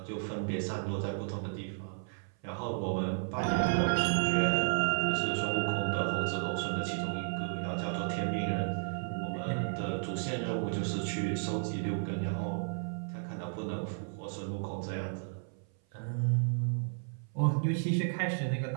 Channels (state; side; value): silent; left; 56 dB below the other